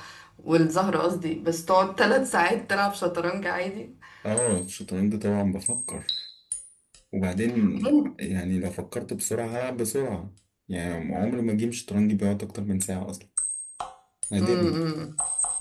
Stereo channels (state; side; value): identical; both; correlation 1.00